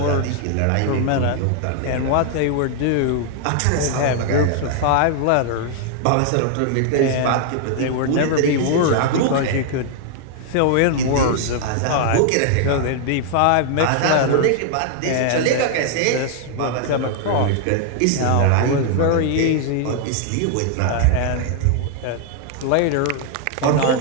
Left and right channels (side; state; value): both; different; correlation 0.00